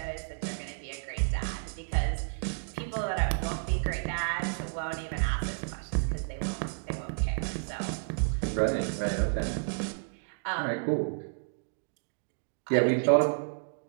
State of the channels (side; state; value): left; silent; digital silence